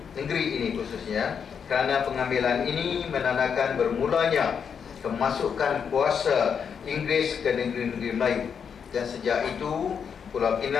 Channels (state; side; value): quieter; right; 6.9 dB